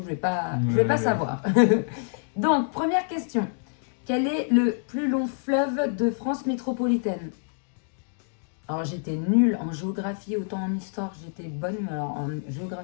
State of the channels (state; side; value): silent; right; digital silence